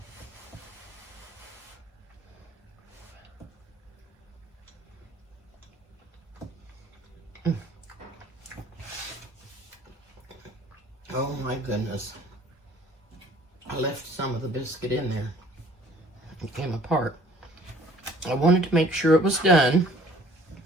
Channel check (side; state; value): both; normal; correlation 0.55